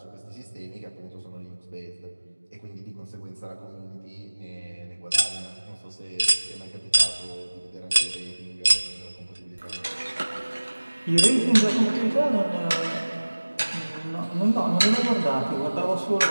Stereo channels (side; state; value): both; inverted; correlation -1.00